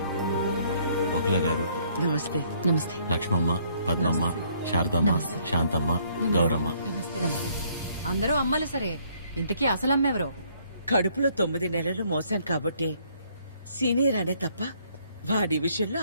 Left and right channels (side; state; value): both; inverted; correlation -0.65